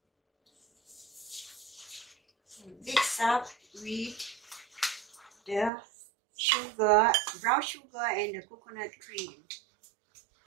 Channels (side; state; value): left; drops out; at 5.7 s